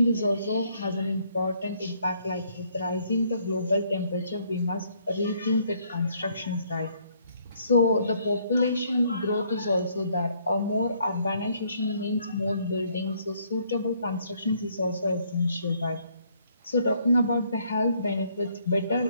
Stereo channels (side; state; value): both; inverted; correlation -0.67